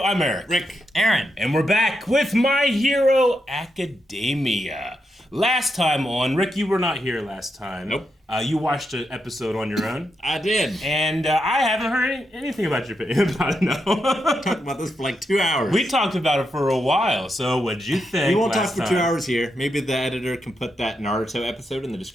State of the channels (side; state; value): both; normal; correlation 0.84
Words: Eric. Rick. Aaron. And we're back with My Hero Academia. Last time on, Rick, you were not here last time. Nope. You watched an episode on your own. I did. And I haven't heard anything about your opinion about it, no. Talked about this for like 2 hours. We talked about it for a while, so what'd you think? We won't talk for last 2 time? hours here. Maybe the editor can put that Naruto episode in the